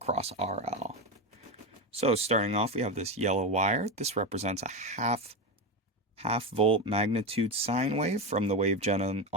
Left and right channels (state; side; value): normal; both; correlation 0.15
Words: RL. So starting off, we have this yellow wire. This represents a half volt magnitude sine wave from the wave gen